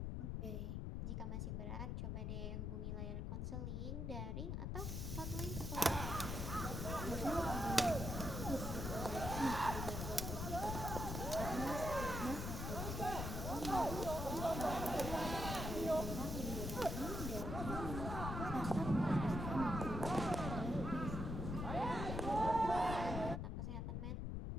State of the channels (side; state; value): left; noise; rumble, 3 dB below the sound